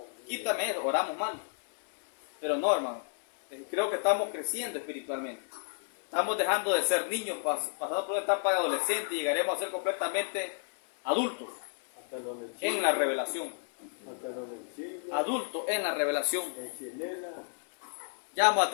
Quítame eso, oramos mal. Pero no, hermano. Creo que estamos creciendo espiritualmente. Estamos dejando de ser niños, pasando por una etapa de adolescente y llegaremos a ser completamente adultos Hasta donde en la revelación. hasta donde sigue, Adultos en la revelación. en Chilena. Ya vamos a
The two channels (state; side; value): silent; right; 57 dB below the other